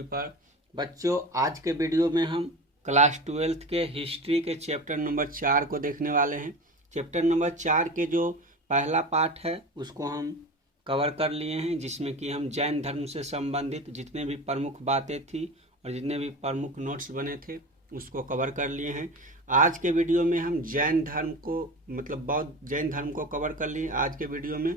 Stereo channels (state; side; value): normal; both; correlation 0.30